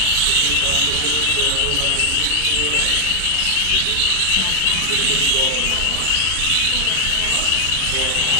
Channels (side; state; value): both; different; correlation 0.00